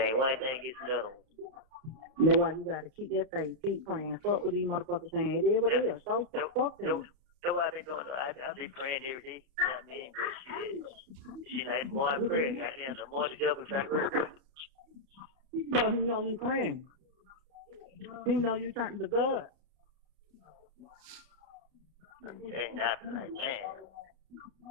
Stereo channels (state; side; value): late; left; 31 ms